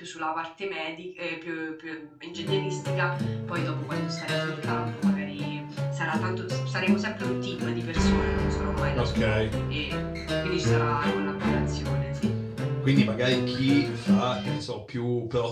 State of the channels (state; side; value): identical; both; correlation 1.00